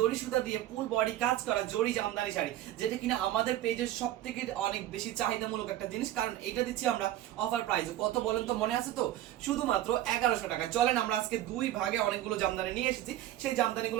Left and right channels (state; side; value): quieter; left; 13.6 dB